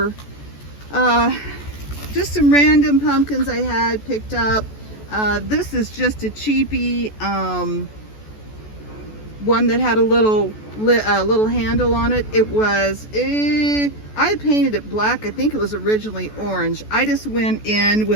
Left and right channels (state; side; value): late; right; 14 ms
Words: just some random pumpkins I had picked up. This is just a cheapie one that had a little handle on it. It was I had painted it black. I think it was originally orange. I just went in